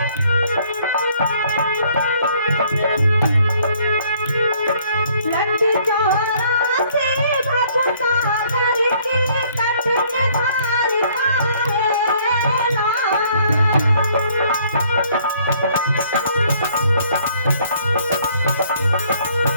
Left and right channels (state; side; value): inverted; both; correlation -0.62